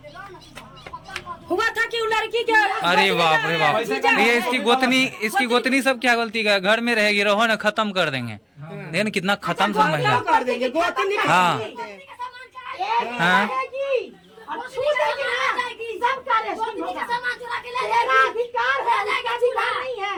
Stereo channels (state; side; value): identical; both; correlation 1.00